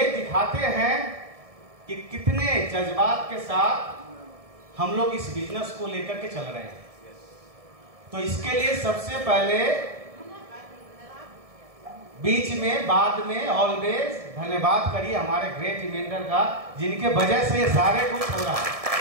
दिखाते हैं कि कितने जज्बात के साथ हम लोग इस बिजनेस को लेकर के चल रहे हैं। तो इसके लिए सबसे पहले बीच में बाद में ऑलवेज धन्यवाद करिए हमारे ग्रेट इवेंटर का, जिनके वजह से ये सारे कुछ हो रहा है,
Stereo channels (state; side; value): late; left; 1.7 ms